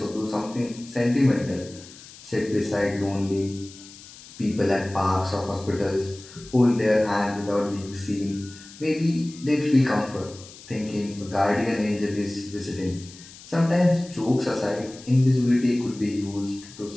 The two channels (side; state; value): left; noise; hiss, 19 dB below the sound